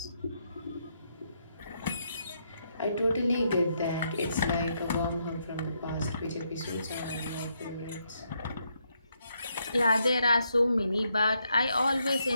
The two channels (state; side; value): inverted; both; correlation -0.78